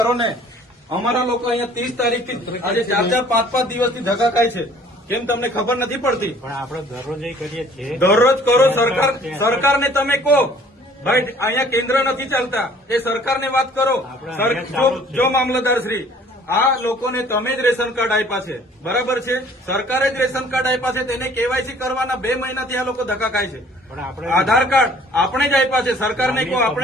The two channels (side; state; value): both; normal; correlation 0.54